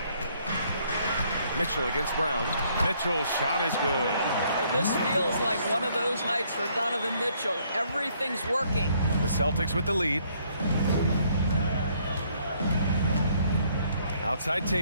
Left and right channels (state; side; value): inverted; both; correlation -0.67